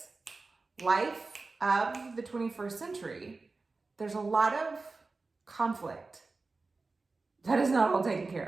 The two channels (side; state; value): left; quieter; 3.8 dB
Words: life of the 21st century, there's a lot of conflict that is not all taken